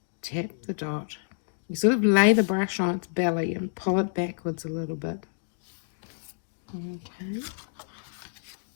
tap the dot. You sort of lay the brush on its belly and pull it backwards a little bit. Okay.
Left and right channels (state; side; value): silent; right; digital silence